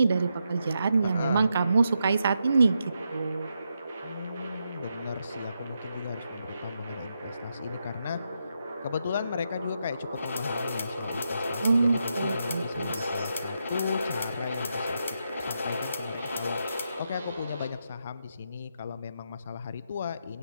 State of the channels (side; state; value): both; inverted; correlation -0.84